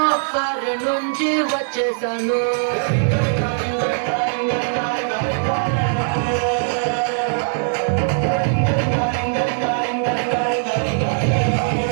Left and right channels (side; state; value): left; silent; digital silence